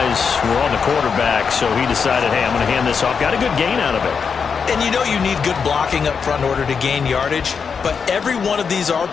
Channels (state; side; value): quieter; right; 6.0 dB